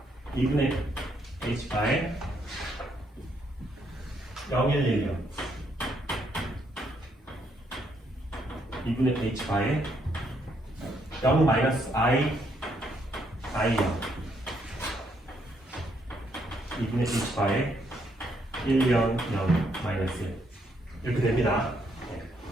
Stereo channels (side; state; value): both; normal; correlation 0.73